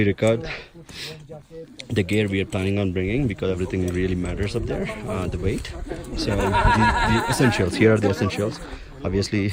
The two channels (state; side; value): identical; both; correlation 1.00